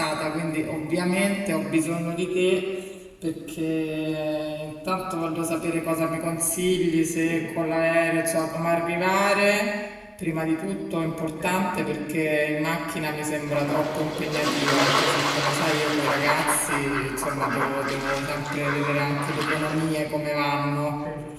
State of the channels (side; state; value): both; identical; correlation 1.00